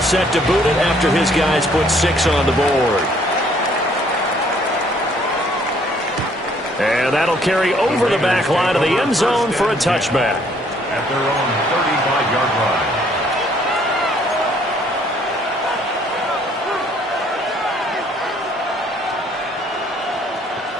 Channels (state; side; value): normal; both; correlation 0.63